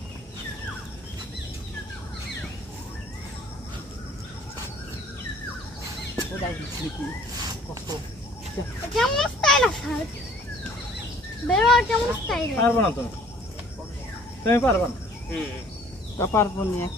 কেমন স্টাইল আছে বেরো কেমন স্টাইল পারবো না তুমি পারবা না তা পারবো না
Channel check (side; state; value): both; normal; correlation 0.55